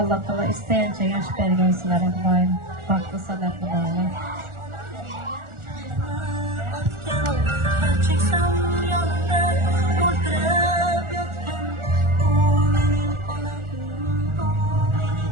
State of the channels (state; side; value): late; left; 1.4 ms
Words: Allah isteyince yaş belgesiyle Kudayım, baktı sadatlı olanlar.